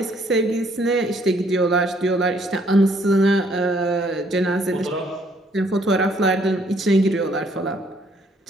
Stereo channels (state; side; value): normal; both; correlation 0.65